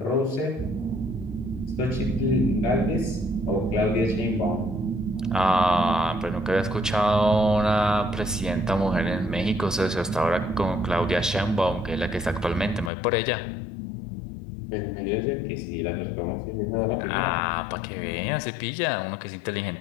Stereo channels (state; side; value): drops out; right; at 12.9 s